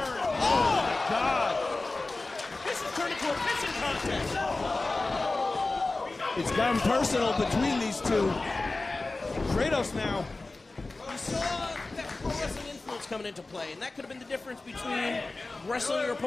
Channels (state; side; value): quieter; right; 3.3 dB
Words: Oh my God. This has turned into a pissing contest. It's gotten personal between these two. Kratos now. We saw that pro wrestling influence coming into play, and that could have been the difference between wrestling your